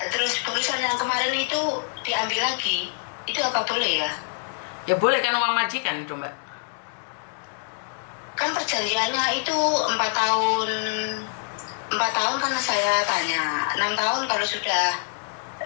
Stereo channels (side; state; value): right; silent; 62 dB below the other